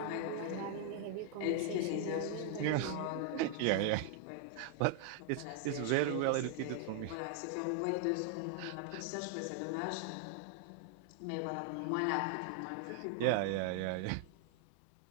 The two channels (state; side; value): different; both; correlation 0.00